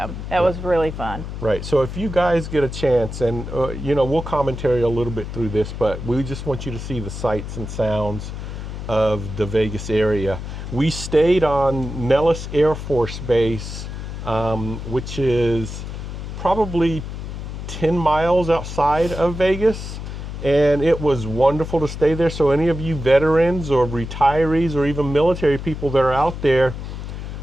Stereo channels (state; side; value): noise; left; hum, 8 dB below the sound